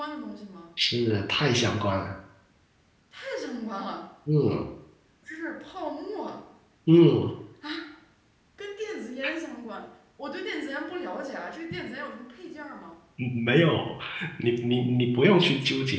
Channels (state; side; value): identical; both; correlation 1.00